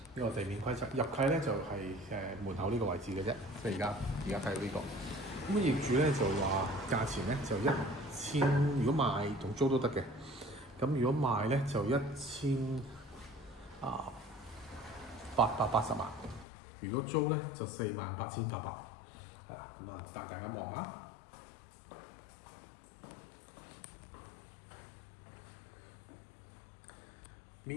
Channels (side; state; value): right; drops out; at 16.4 s